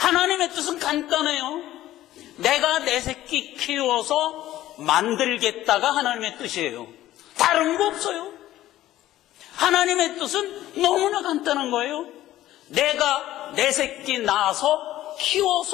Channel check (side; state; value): right; quieter; 14.3 dB